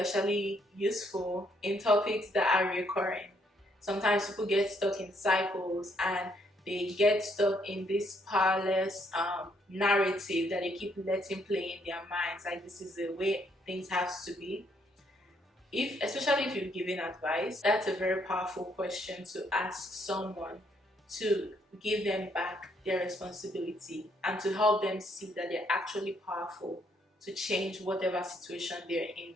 useful in topics that are recurring. Sometimes people get stuck in cycles and they get stuck in this powerless narrative that they keep letting play in their minds, like this is the way things have to be. Especially if you're giving advice, that's a very powerful question to ask someone, to give them back their responsibility and to help them see that they're actually powerful to change whatever situation they're in.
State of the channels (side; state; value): both; normal; correlation 0.71